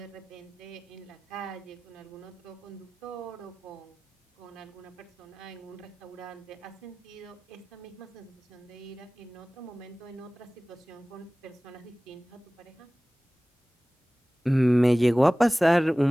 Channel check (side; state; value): both; normal; correlation 0.98